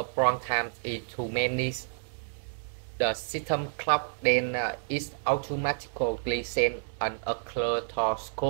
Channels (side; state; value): left; silent; 58 dB below the other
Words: prong times is too many, the system clock then is automatically sent an alert to